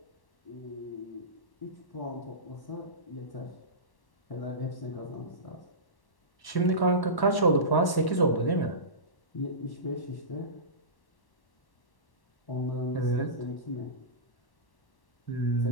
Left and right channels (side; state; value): right; late; 1.1 ms